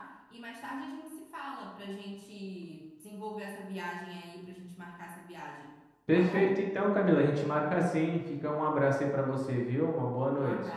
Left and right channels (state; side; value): identical; both; correlation 1.00